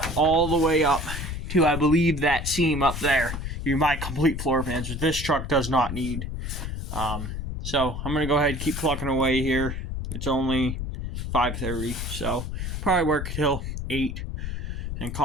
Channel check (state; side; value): noise; left; rumble, 5 dB below the sound